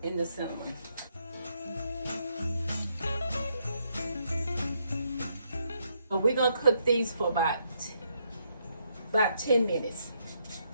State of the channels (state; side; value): inverted; both; correlation -0.75